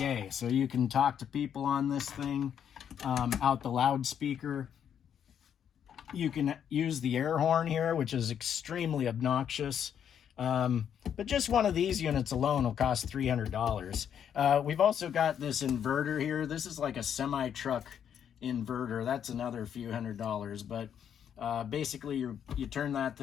So you can talk to people on this thing out the loudspeaker. You can use the air horn here, which is extremely obnoxious. But just one of these units alone will cost $300. We've also got this inverter here. This is like a semi-truck inverter. That's another few $100s. But basically, you turn that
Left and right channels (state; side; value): quieter; right; 8.7 dB